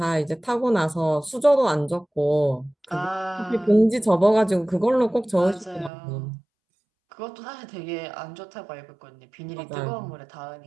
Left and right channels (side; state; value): left; drops out; at 5.9 s